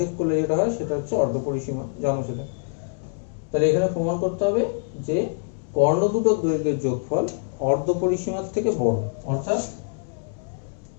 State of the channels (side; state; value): right; silent; digital silence